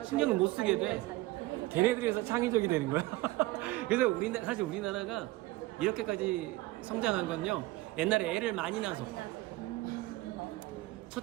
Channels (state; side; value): quieter; left; 19.6 dB